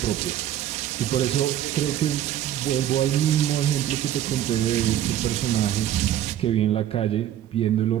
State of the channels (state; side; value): quieter; left; 11.6 dB